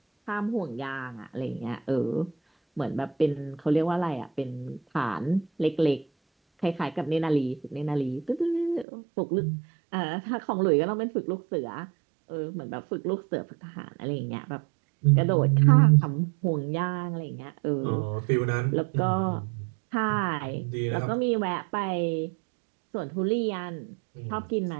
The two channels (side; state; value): left; drops out; at 8.8 s